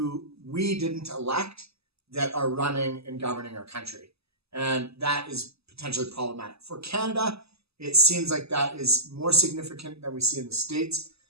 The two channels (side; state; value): left; late; 0.78 ms